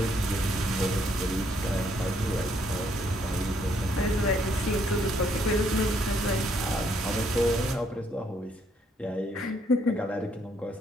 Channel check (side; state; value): both; normal; correlation 0.70